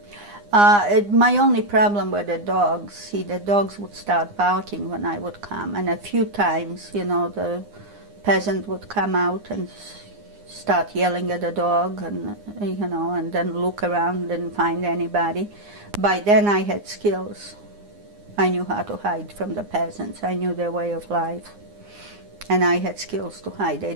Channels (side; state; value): left; late; 9.8 ms